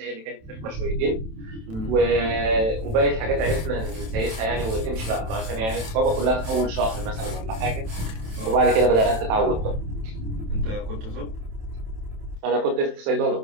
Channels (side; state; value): left; late; 27 ms